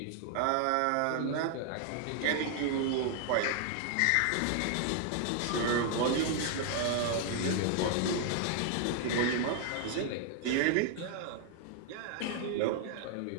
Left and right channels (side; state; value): both; different; correlation 0.00